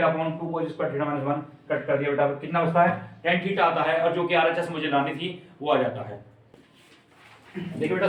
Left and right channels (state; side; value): identical; both; correlation 1.00